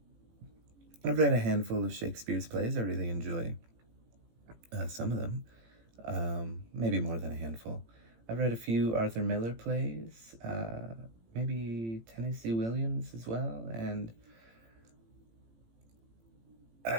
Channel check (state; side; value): late; left; 18 ms